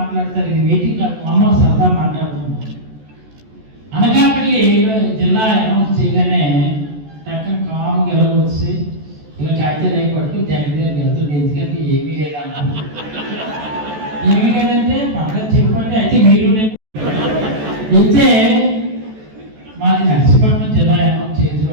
ఇది మీటింగ్ కాదు, అమ్మ సరదా మాట్లాడుతున్నాం. అనకాపల్లి జిల్లా అనౌన్స్ చేయగానే టక్కన కామ్గా ఎలా వచ్చి ఇలా కాగితాలు అయి పట్టుకుని జగన్ దగ్గరికి వెళ్తుంది. ఎందుకంటే ఏమీ లేదన్నా, ఏమీ లేదంటే పక్కన చెప్పండి. అయితే మీరు వెళ్తే మాది నర్సీపట్నం జిల్లా అనౌన్స్ చేతులు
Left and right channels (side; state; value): left; late; 14 ms